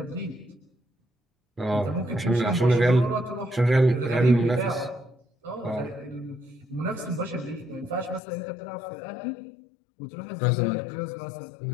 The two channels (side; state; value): right; drops out; at 8.2 s